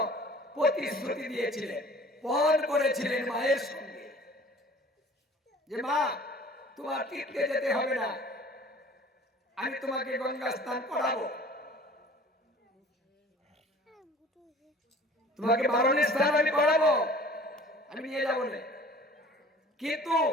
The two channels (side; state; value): both; normal; correlation 0.47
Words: প্রতিশ্রুতি দিয়েছিলেন, পণ করেছিলেন মায়ের সঙ্গে যে মা তোমার তীর্থে যেতে হবে না, আমি তোমাকে গঙ্গা স্নান করাবো, তোমাকে বারণের স্নান আমি করাবো, আমি নিয়ে যাবো না। কিন্তু